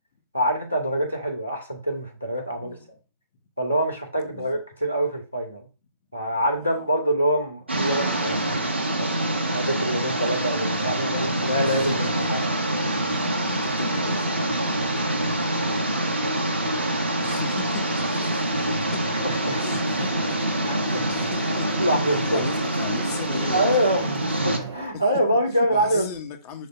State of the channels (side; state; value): both; inverted; correlation -0.63